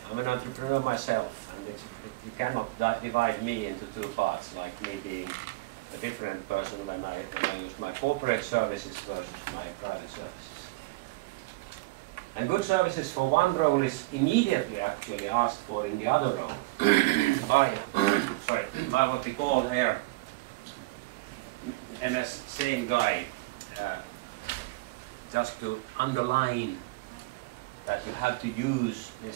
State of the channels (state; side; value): quieter; left; 21.7 dB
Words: I'm an entrepreneur myself, and you cannot divide me into two parts, like me being a different person when I use my corporate services versus my private services. And good services for one role is immediately actually asked for in the other role by what we call here MS same guy, just to underline that you have to use